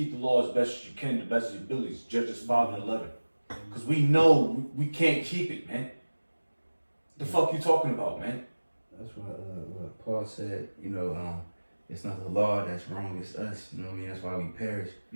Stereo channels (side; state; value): both; inverted; correlation -1.00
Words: the law as best as you can, the best of your abilities. Judges 5 and 11, because we know we can't keep it, man. The fuck you talking about, man? That's what Paul said. It's not the law that's wrong, it's us. You know what I mean? That's why we perish.